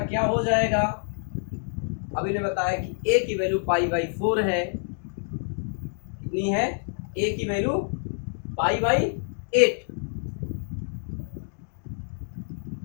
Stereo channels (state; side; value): silent; right; digital silence